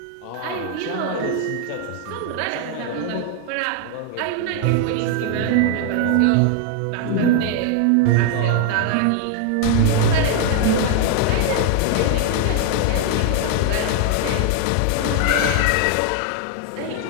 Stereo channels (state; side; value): different; both; correlation 0.00